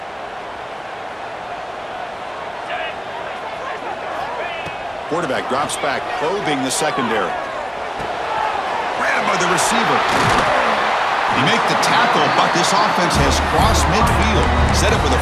Quarterback drops back, probing the secondary. Grabbed by the receiver. He make the tackle, but this offense has crossed midfield. Set up with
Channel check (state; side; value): identical; both; correlation 1.00